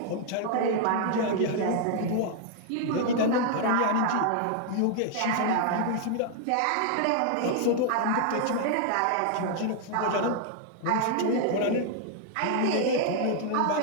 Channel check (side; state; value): both; different; correlation 0.00